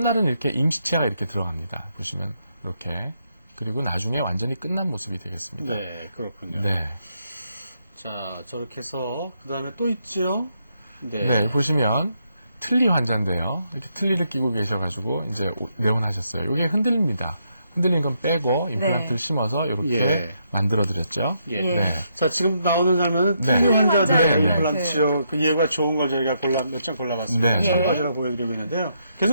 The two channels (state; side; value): inverted; both; correlation -0.78